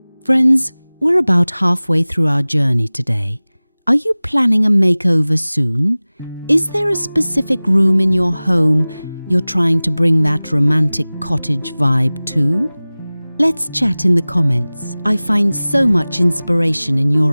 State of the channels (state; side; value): inverted; both; correlation -0.99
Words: Friends, we're about halfway through our journey today. Are you planning a makeover soon? Is there a specific room in your home you're trying to bring that romantic cottage vibe to? Let's chat in the comments. I find so much inspiration in